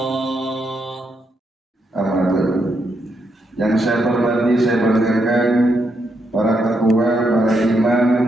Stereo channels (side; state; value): both; normal; correlation 0.80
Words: Yang saya hormati, saya banggakan para ketua, para imam,